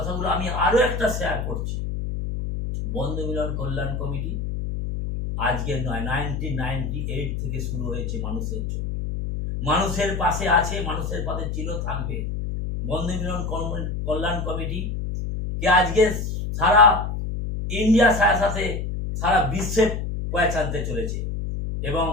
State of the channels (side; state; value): left; noise; hum, 3 dB below the sound